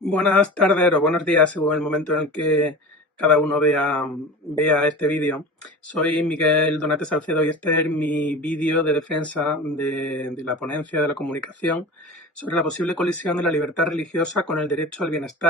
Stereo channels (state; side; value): normal; both; correlation 0.33